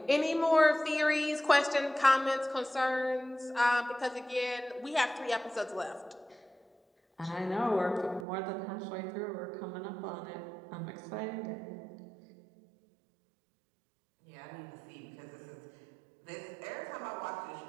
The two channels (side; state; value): left; drops out; at 8.2 s